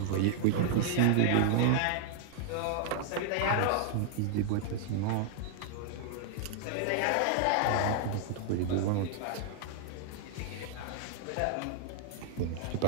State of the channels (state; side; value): different; both; correlation 0.00